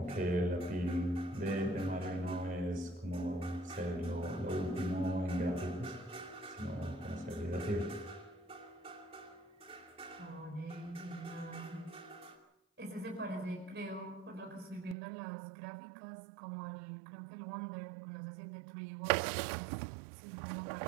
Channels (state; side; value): drops out; left; at 15.0 s